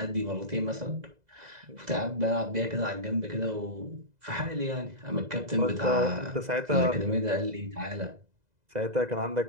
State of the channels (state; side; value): late; left; 2.0 ms